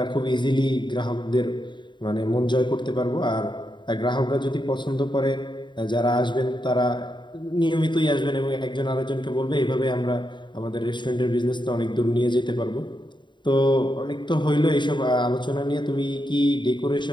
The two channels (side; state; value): right; late; 0.23 ms